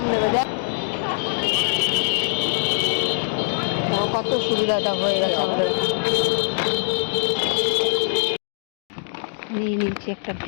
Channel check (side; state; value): right; silent; digital silence